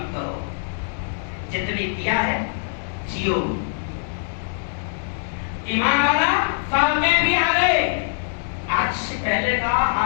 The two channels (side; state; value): right; silent; digital silence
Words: کرو. جتنی دیا ہے جیو. ایمان والا فاتح بھی آ گئے. آج سے پہلے کا